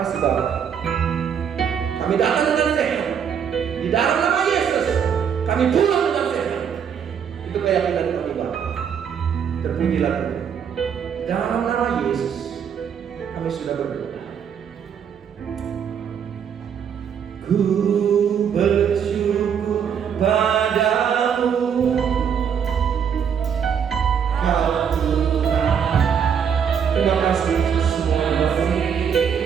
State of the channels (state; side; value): quieter; left; 7.7 dB